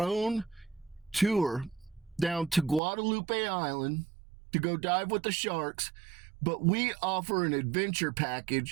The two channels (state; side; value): drops out; left; at 2.8 s